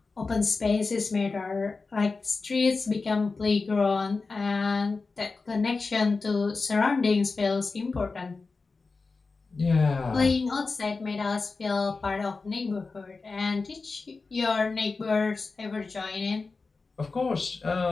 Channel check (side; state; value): right; quieter; 4.1 dB